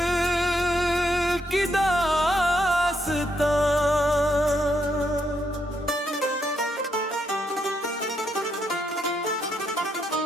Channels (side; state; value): both; normal; correlation 0.77